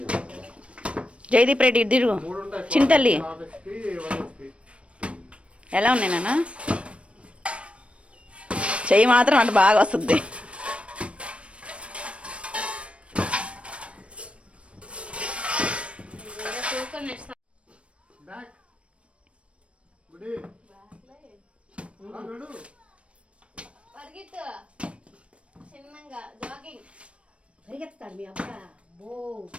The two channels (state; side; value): late; left; 0.061 ms